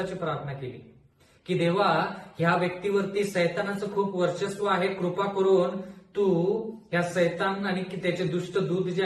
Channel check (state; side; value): identical; both; correlation 1.00